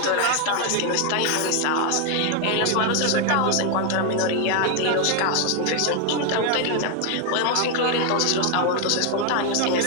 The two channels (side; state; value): both; different; correlation 0.01